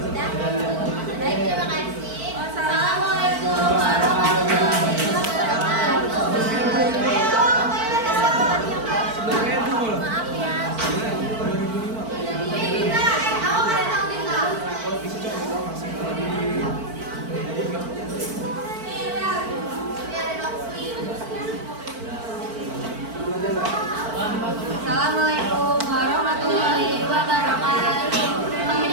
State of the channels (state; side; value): late; left; 4.5 ms